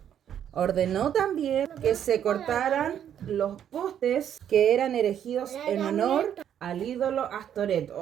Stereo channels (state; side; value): quieter; left; 9.6 dB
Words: Ordenó también que se cortaran los postes que eran erigidos en honor al ídolo Astoret.